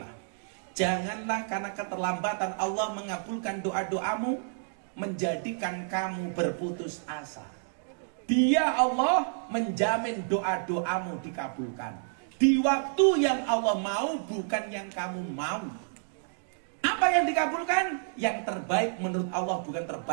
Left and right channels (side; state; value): left; silent; digital silence